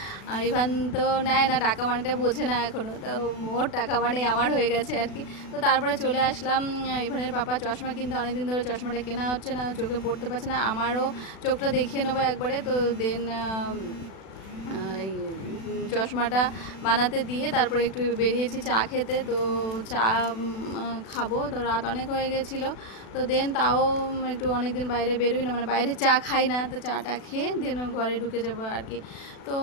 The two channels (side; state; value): right; late; 36 ms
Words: আর ইভান তো নেয় না টাকা, মানেটা বোঝে না এখনও, তো ওর টাকা মানে আমার হয়ে গেছে আর কি। তো তারপরে চলে আসলাম। ইভানের পাপা চশমা কিনতে, অনেকদিন ধরে চশমাটা কেনা হচ্ছে না, চোখে পড়তে পারছে না, আমারও চোখটা দেখিয়ে নেবো একবারে। তো দেন এই চশমাটা বানাতে দিয়ে তারপরে একটু বেরিয়েছি চা খেতে, তো চা খাবো, তো রাত অনেক হয়ে গেছিলো। তো দেন তাও একটু অনেক দিন বাইরে বেরোই না, মানে বাইরে চা খাই না, তো চাটা খেয়ে দেন ঘরে ঢুকে যাবো আর কি। তো